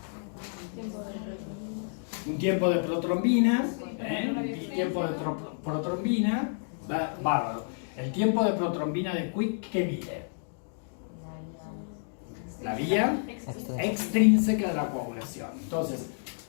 Un tiempo de protrombina. Un tiempo de protrombina. Bárbaro. El tiempo de protrombina de Quick, ¿qué mide? La vía extrínseca de la coagulación. Entonces,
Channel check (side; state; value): right; silent; digital silence